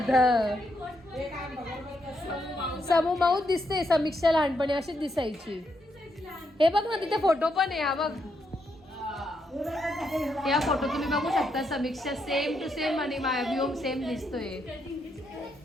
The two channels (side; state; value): both; normal; correlation 0.79